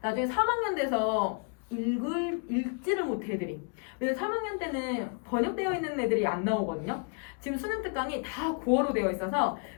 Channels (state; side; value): quieter; right; 38.7 dB